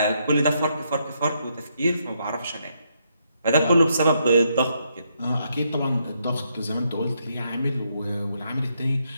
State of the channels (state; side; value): inverted; both; correlation -0.77